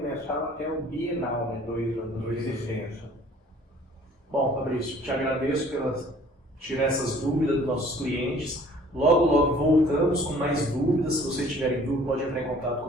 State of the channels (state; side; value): normal; both; correlation 0.53